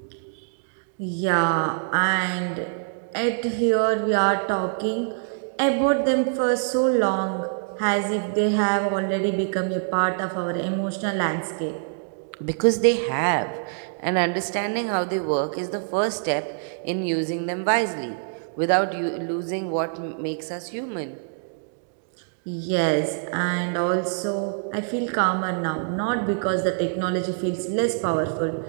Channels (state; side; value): silent; left; digital silence